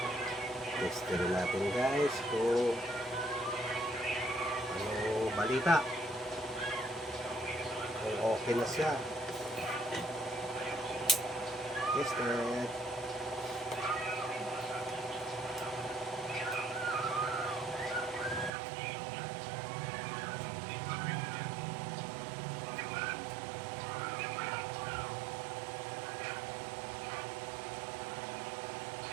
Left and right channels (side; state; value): left; drops out; at 18.5 s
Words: testin natin guys kung ano balita, kung okay na siya. Tested.